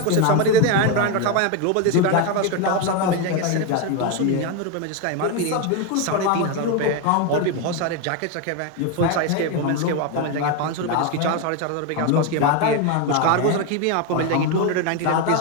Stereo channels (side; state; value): both; different; correlation 0.02